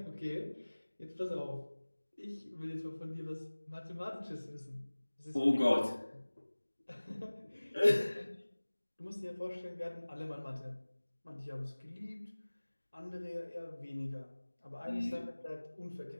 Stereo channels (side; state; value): both; inverted; correlation -1.00